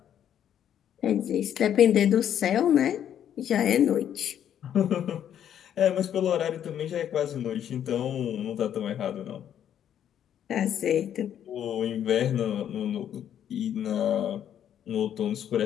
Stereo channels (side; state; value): right; quieter; 9.9 dB